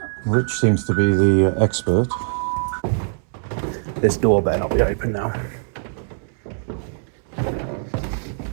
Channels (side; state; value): left; silent; 64 dB below the other